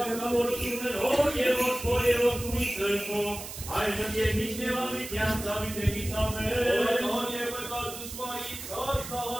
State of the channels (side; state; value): right; noise; hiss, 10 dB below the sound